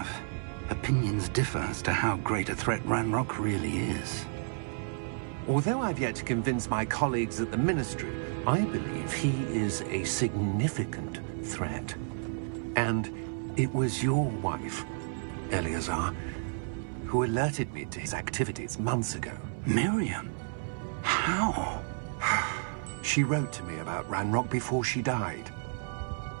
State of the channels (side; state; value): left; silent; 57 dB below the other